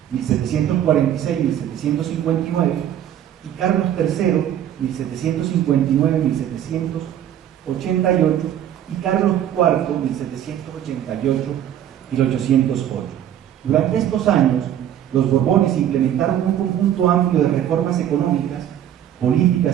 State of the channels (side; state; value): left; quieter; 10.7 dB